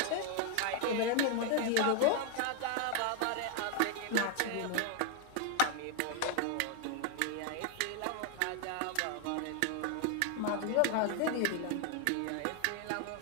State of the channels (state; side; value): different; both; correlation 0.00